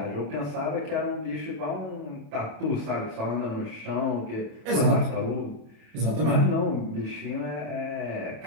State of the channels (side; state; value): left; late; 27 ms